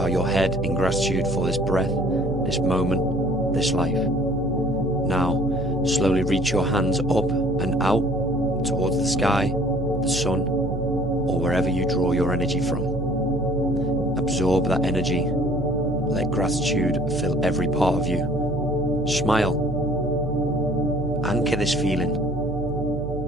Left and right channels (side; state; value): right; noise; hum, 6 dB below the sound